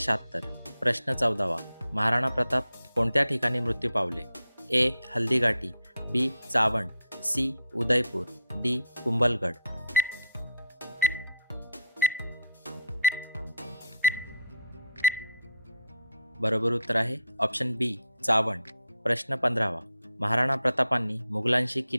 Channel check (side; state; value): both; inverted; correlation -0.70